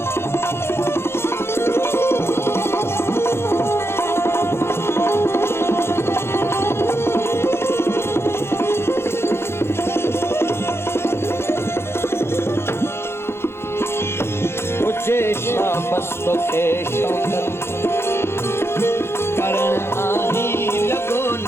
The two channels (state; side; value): late; right; 0.12 ms